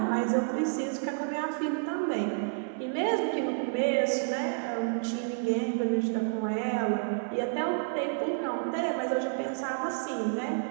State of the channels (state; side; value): silent; left; digital silence